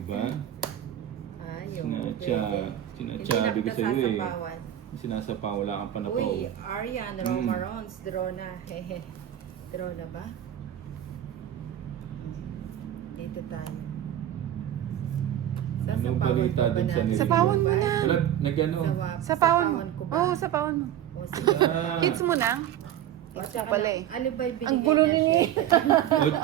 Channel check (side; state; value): left; quieter; 11.4 dB